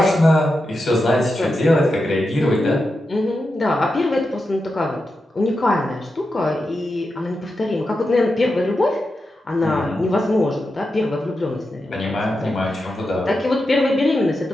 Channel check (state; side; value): normal; both; correlation 0.89